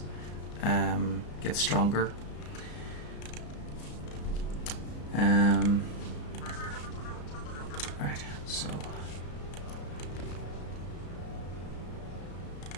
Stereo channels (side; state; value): right; late; 34 ms